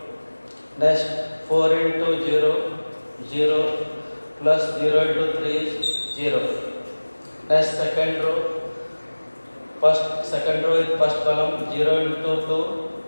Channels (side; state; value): both; inverted; correlation -1.00